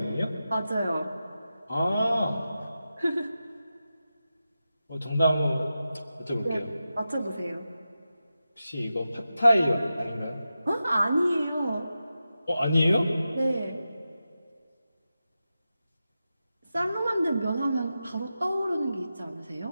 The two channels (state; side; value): inverted; both; correlation -0.92